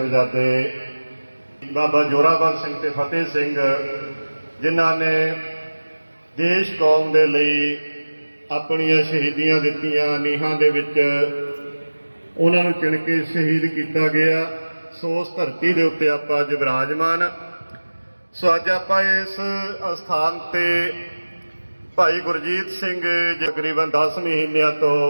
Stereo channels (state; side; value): inverted; both; correlation -1.00